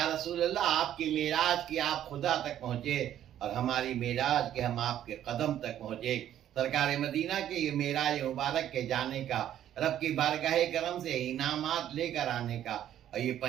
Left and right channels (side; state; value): left; quieter; 11.2 dB